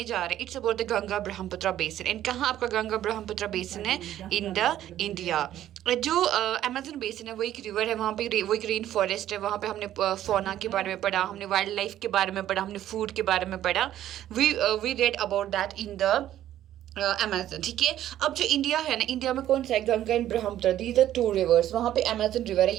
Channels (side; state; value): left; quieter; 12.3 dB